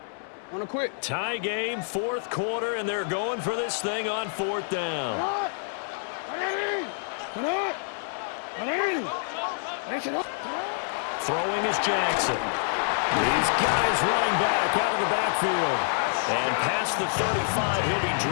Wanna quit? Tie game, 4th quarter, and they're going for this thing on 4th down. Throwing is Jackson. These guys running back out of the backfield. And past the 35, he'll be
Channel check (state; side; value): silent; right; 60 dB below the other